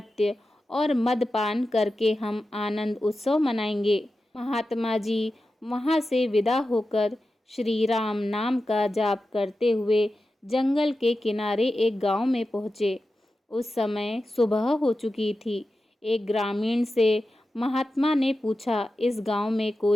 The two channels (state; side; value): normal; both; correlation 0.92